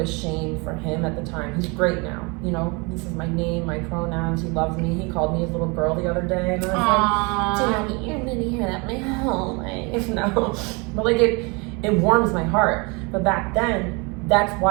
shame for him at the time. He's great now. You know, he says my name, my pronouns. He loves me. He called me his little girl the other day, and I was like, Daddy, you're gonna hear that my whole life. No, but like it warms my heart. But back then, that's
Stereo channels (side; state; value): left; quieter; 29.4 dB